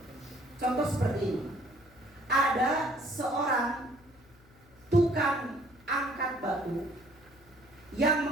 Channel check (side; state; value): left; noise; hum, 27 dB below the sound